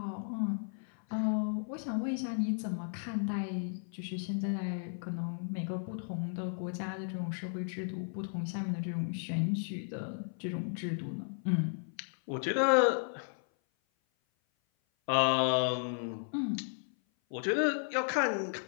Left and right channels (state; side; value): silent; right; 55 dB below the other